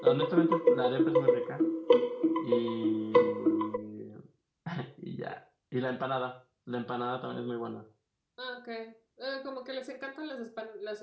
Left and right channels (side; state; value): both; identical; correlation 1.00